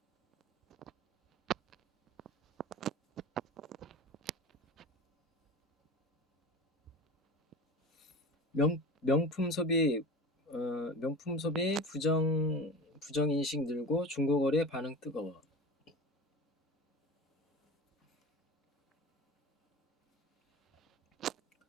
명품 소비 부정 인식 늘고 중고거래 반응 뜨거워.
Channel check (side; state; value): both; normal; correlation 0.33